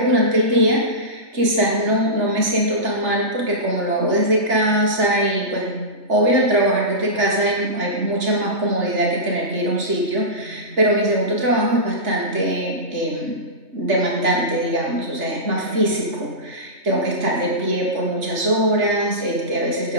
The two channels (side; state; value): left; late; 3.4 ms